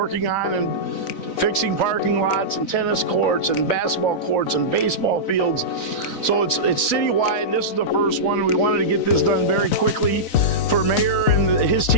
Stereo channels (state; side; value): late; right; 4.0 ms